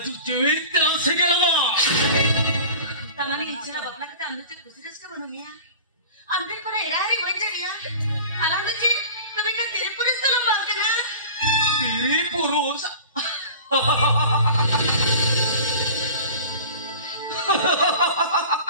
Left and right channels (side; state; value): both; inverted; correlation -0.39